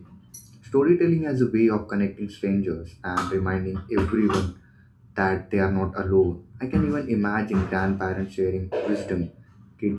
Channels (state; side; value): identical; both; correlation 1.00